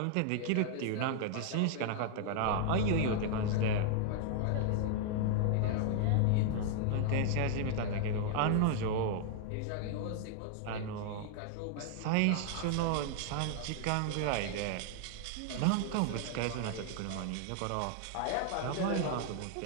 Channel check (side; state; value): both; different; correlation 0.00